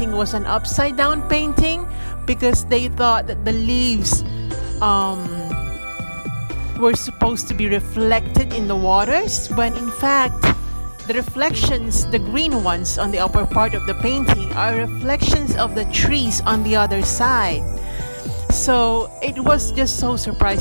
was an upside down painting because they thought that the leaves were supposed to be reflected in the waters, when in fact the reflections, the green ones on the upper part of the painting, are reflections of the trees on the other side. So it was just so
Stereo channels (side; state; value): both; inverted; correlation -1.00